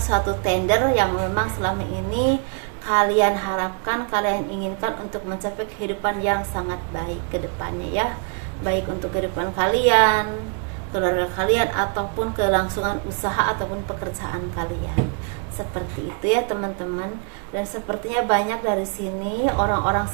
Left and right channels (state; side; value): quieter; left; 38.9 dB